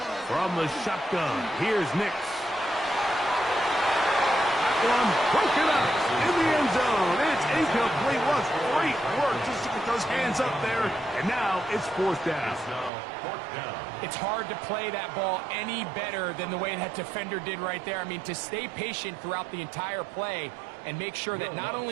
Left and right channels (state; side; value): drops out; left; at 12.9 s